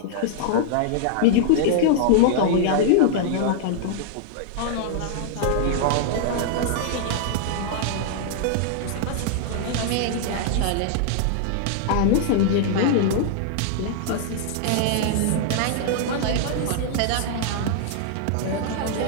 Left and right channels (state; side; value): different; both; correlation -0.01